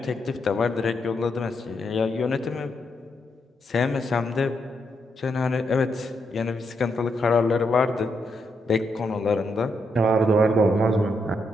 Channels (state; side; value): normal; both; correlation 0.80